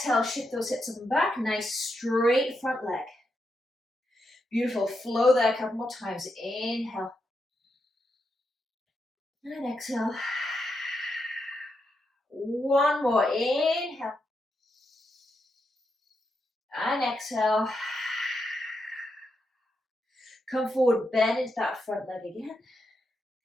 shift those hips up and back. Nice straight front leg. Beautiful. Flow there a couple more times. Inhale. And exhale. One more. Inhale. And exhale. Come forward, bend into that front leg again.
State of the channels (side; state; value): both; normal; correlation 0.84